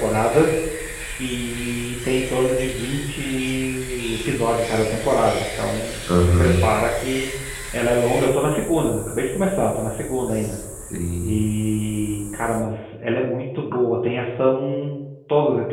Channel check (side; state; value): both; identical; correlation 1.00